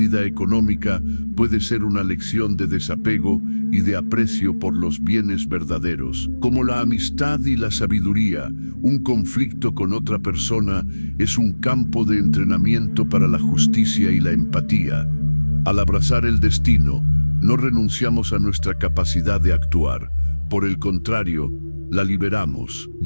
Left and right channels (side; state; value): both; inverted; correlation -1.00